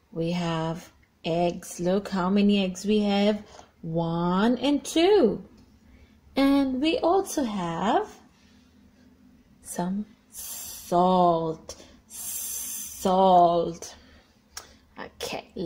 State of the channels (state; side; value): identical; both; correlation 1.00